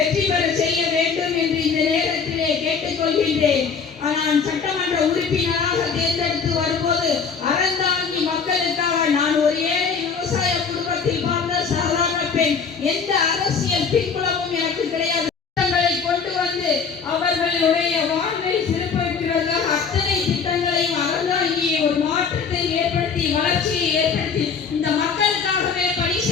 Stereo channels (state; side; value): quieter; right; 5.8 dB